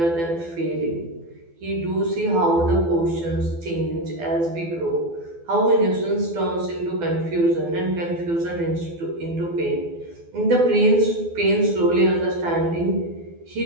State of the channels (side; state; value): left; late; 12 ms